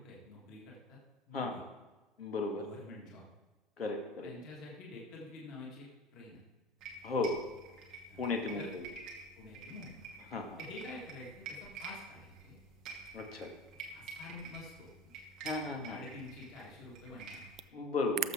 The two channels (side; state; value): both; normal; correlation 0.35